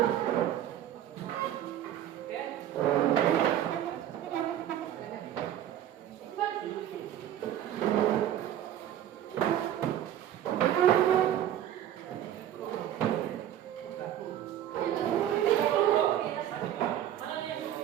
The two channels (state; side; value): quieter; left; 11.3 dB